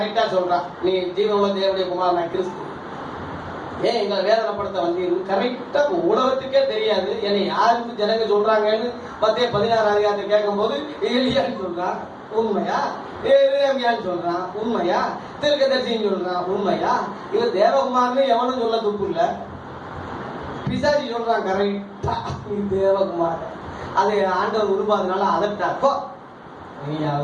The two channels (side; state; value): both; identical; correlation 1.00